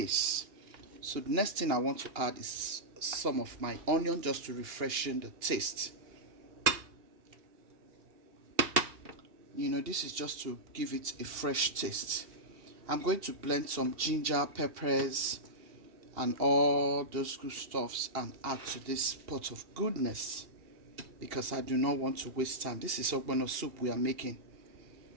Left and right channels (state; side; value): late; left; 2.8 ms